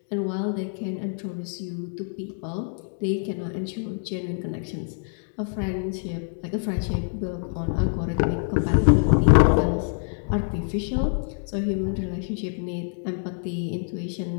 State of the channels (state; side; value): silent; right; 61 dB below the other